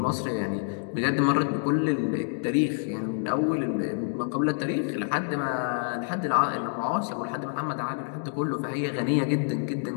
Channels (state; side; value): silent; right; digital silence